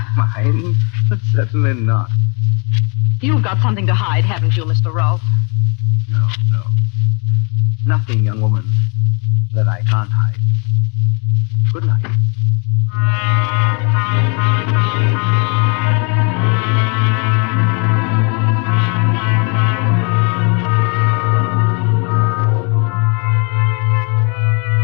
Mind? Certainly not. You've got something to hide, haven't you, Mr. Rolfe? No. Nothing, young woman, that I can't hide. Good night.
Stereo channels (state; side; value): quieter; right; 34.8 dB